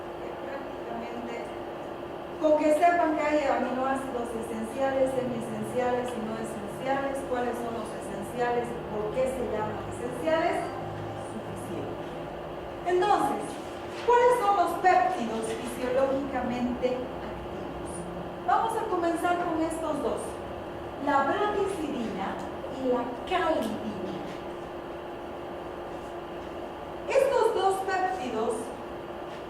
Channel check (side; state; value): both; identical; correlation 1.00